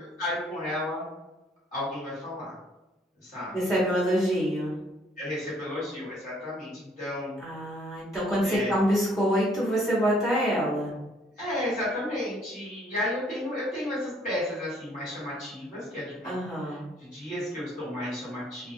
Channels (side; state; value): both; normal; correlation 0.63